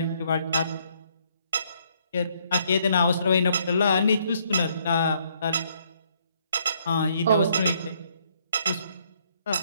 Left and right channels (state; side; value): inverted; both; correlation -0.69